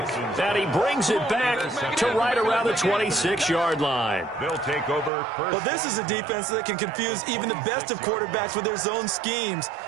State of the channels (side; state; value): left; drops out; at 5.1 s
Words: And he brings it back to right around the 26-yard line. They'll take over first. Well, this is a defense that can confuse even the best of quarterbacks with their zone schemes.